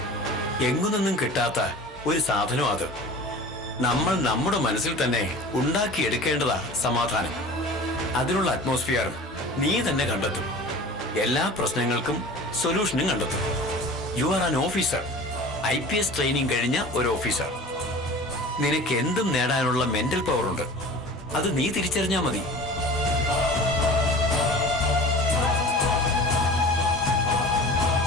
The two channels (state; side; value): normal; both; correlation 0.39